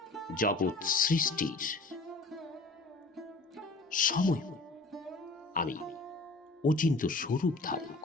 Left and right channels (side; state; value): right; quieter; 3.3 dB